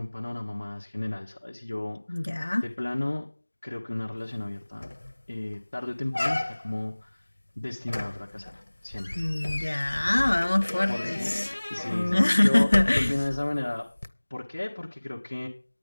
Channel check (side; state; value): both; inverted; correlation -1.00